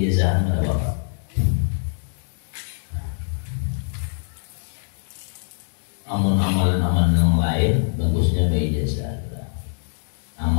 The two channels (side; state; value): right; silent; digital silence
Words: ada Bapak. Amalan-amalan yang lain bagusnya ijazah.